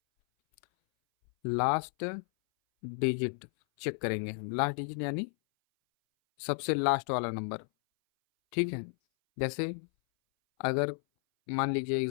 लास्ट डिजिट चेक करेंगे हम। लास्ट डिजिट यानी सबसे लास्ट वाला नंबर, ठीक है। जैसे अगर मान लीजिए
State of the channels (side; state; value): right; silent; 56 dB below the other